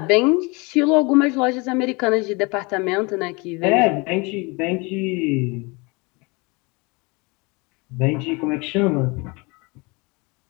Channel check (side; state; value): right; quieter; 27.7 dB